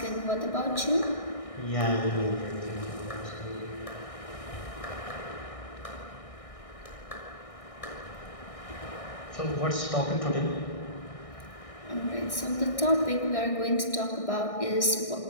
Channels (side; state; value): right; late; 1.6 ms